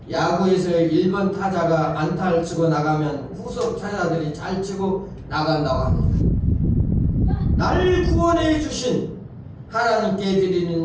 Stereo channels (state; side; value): identical; both; correlation 1.00